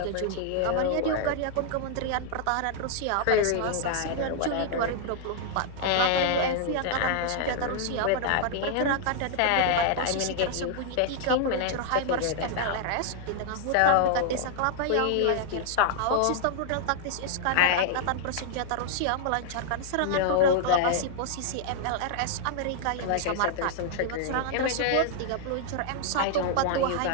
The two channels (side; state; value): both; different; correlation -0.01